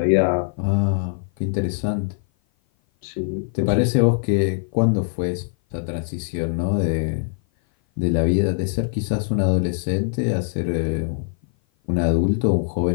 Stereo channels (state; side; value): silent; right; 56 dB below the other